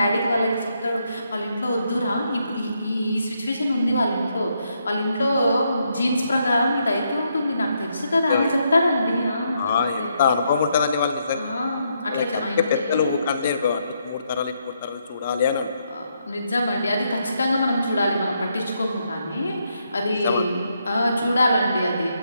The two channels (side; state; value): both; inverted; correlation -0.77